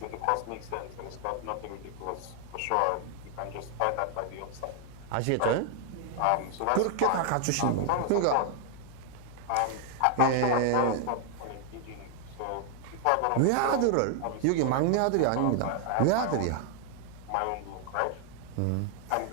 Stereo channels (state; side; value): different; both; correlation 0.00